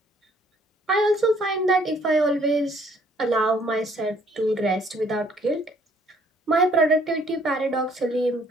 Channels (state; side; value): normal; both; correlation 0.63